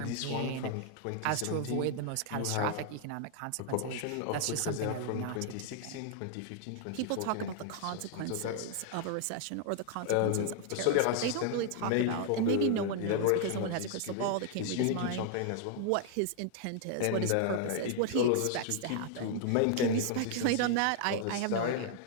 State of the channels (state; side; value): different; both; correlation 0.00